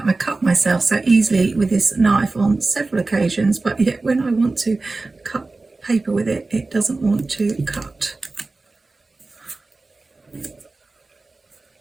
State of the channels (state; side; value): quieter; left; 3.5 dB